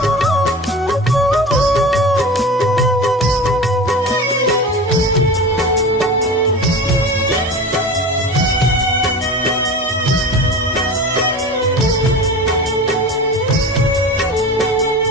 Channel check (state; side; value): normal; both; correlation 0.33